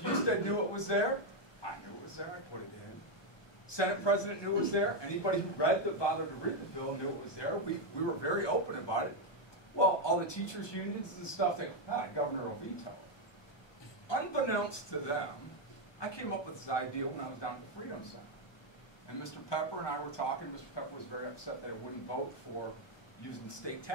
knew it was there. I knew it was there. I put it in. Senate President knew it was there. Anybody who bothered to read the bill knew it was there. We were very open about it. Well, all the teachers' unions and stuff, they go, Governor will veto it. Unbeknownst to them, I came up with this idea when I was down at the Freedom Center. And Mr. Pepper and I were talking. Mr. Pepper was very upset that I wouldn't vote for using state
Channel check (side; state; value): right; late; 1.2 ms